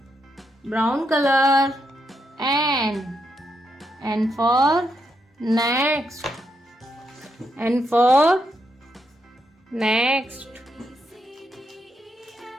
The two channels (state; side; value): normal; both; correlation 0.81